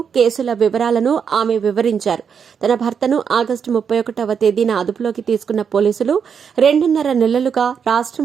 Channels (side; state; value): left; quieter; 6.9 dB